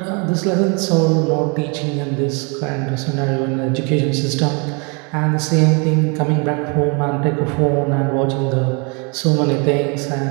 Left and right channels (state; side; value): quieter; left; 32.9 dB